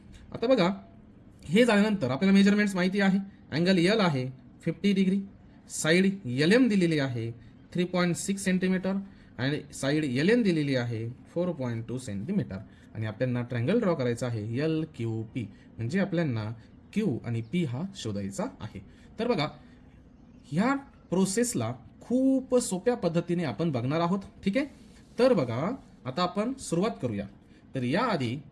आता बघा हे झाल्यानंतर आपल्याला मेजरमेंट्स माहिती आहे. अँगल एल आहे 50 डिग्री, साईड एल एम दिलेली आहे 3.6 सेंटीमीटर आणि साईड एल एन दिलेली आहे 4.2 सेंटीमीटर आणि आपल्याला ट्रँगल ड्रॉ करायचा आहे एल क्यू पी. म्हणजे आपल्याला क्यू आणि पी हा शोधायचा आहे. तर बघा ह्या प्रोसेसला खूप सोप्या पद्धतीने आपण बघणार आहोत. ठीक आहे. तर बघा आता आपण सुरुवात करूया. तर याआधी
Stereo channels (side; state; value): both; identical; correlation 1.00